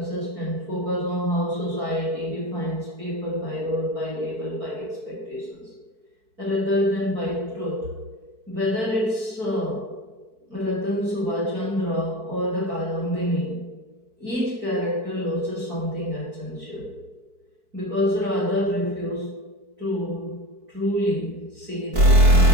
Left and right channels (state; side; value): late; left; 4.6 ms